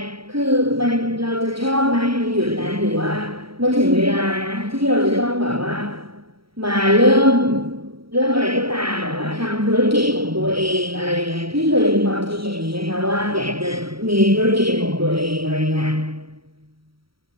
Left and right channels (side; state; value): left; late; 0.75 ms